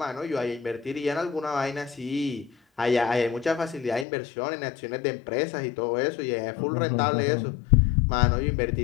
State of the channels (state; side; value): drops out; right; at 4.0 s